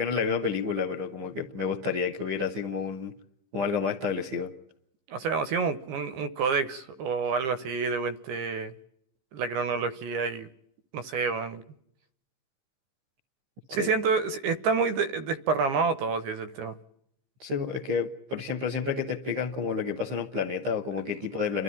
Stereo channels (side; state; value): left; late; 15 ms